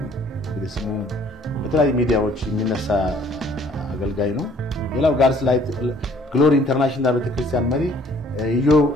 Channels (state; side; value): normal; both; correlation 0.58